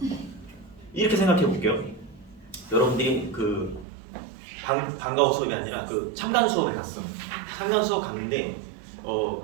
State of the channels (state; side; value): drops out; left; at 3.9 s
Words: 이렇게 생각해 볼게요. 여러분들이 그 방과후 수업이 아니라 그 참관 수업에 갔어. 참관 수업 갔는데